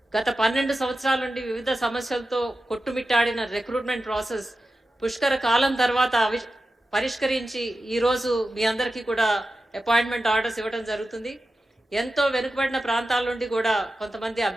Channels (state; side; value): normal; both; correlation 0.93